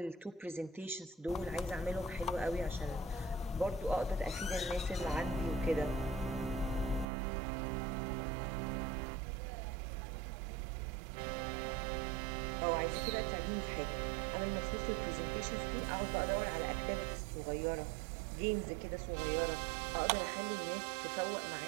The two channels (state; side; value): drops out; left; at 7.1 s